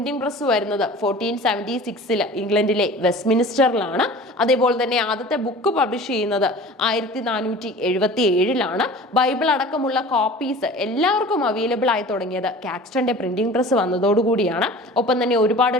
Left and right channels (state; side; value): normal; both; correlation 0.41